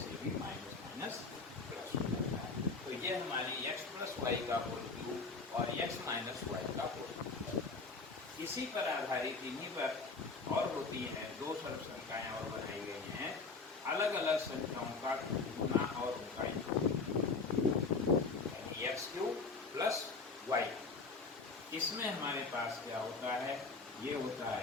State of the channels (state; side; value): quieter; right; 4.2 dB